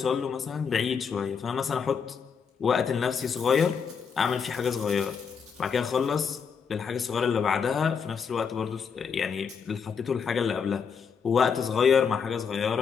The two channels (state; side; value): quieter; right; 6.3 dB